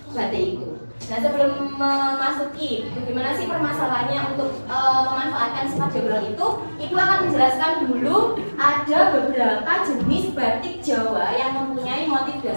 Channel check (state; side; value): inverted; both; correlation -1.00